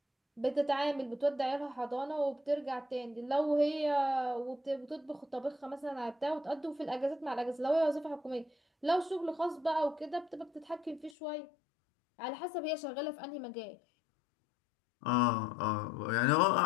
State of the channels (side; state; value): right; drops out; at 11.2 s